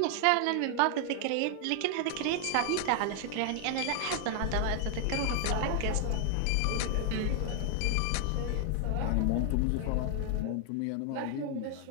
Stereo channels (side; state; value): both; different; correlation 0.00